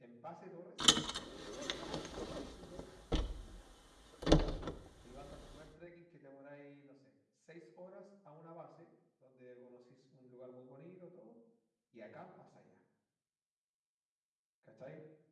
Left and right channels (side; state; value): both; identical; correlation 1.00